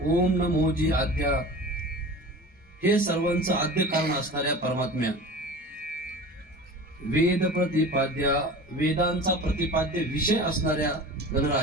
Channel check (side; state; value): both; normal; correlation 0.36